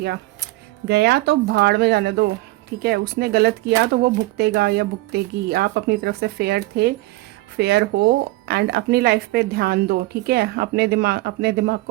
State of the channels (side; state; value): left; quieter; 19.8 dB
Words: गया तो भाड़ में जाने दो, ठीक है। उसने गलत किया तो वो भुगतेगा या भुगतेगी। आप अपनी तरफ से फेयर थे, फेयर हो, एंड अपनी लाइफ पे ध्यान दो, ठीक है। अपने दिमाग